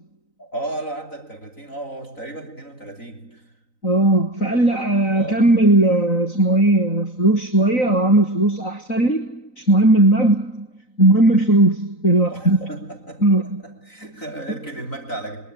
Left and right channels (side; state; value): right; late; 3.9 ms